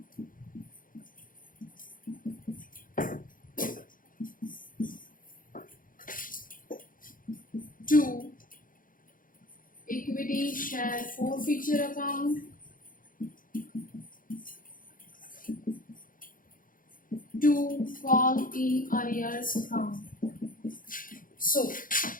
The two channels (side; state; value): right; late; 0.40 ms